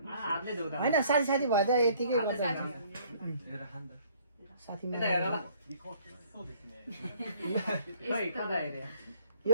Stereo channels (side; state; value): both; inverted; correlation -0.58